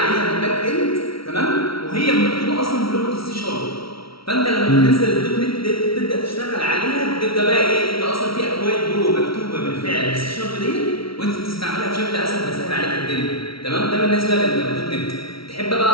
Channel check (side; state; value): right; late; 0.75 ms